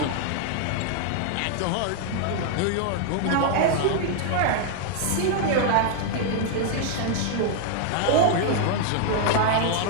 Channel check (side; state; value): both; different; correlation 0.00